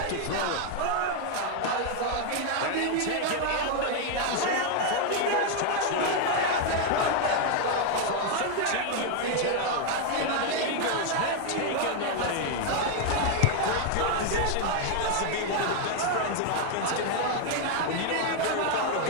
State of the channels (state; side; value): different; both; correlation 0.01